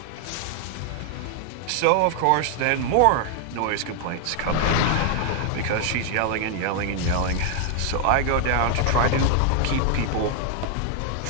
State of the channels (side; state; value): both; different; correlation 0.00